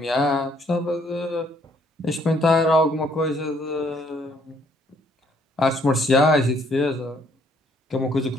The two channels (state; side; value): normal; both; correlation 0.66